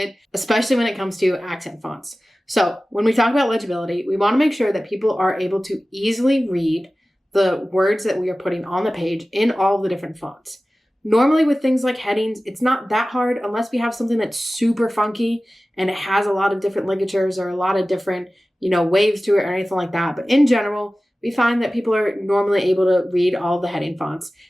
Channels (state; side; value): normal; both; correlation 0.96